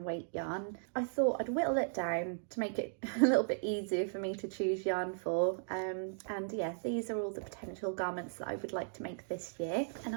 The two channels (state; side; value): silent; left; digital silence